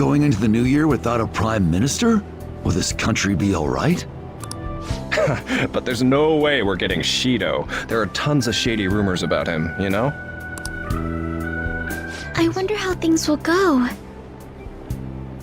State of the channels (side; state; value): both; identical; correlation 1.00